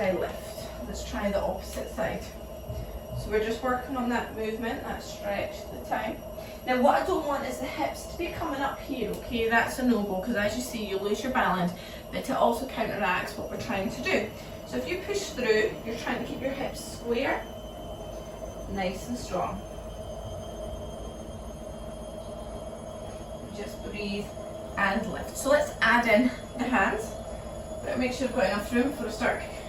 I lift. Let's try the opposite side. So we're just working on that movement, that stretch at the time. Now what I don't want is the hips to be coming up here, okay? That's a no-go, because as you see, you lose your balance, but it also counteracts what we're trying to do. So if you push through, you're trying to keep your hips square, nice and strong. Just breathe and lift. So let's add in the hands. But make sure I've got enough room before I start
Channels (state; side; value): identical; both; correlation 1.00